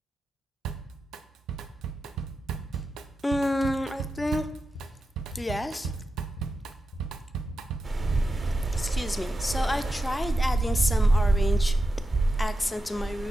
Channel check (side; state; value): both; normal; correlation 0.90